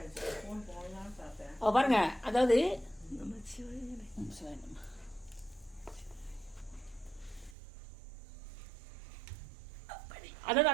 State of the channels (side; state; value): left; drops out; at 7.6 s